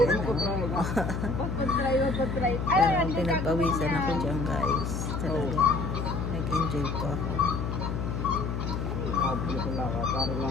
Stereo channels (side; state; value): left; noise; hum, 3 dB below the sound